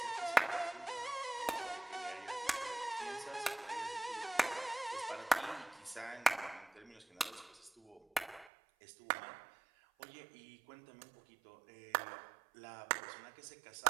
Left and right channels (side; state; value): left; drops out; at 8.5 s